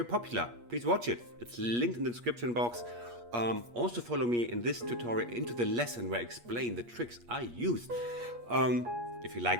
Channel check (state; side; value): late; left; 8.4 ms